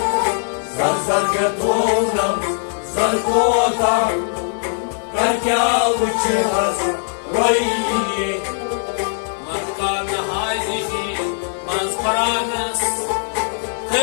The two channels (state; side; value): silent; right; digital silence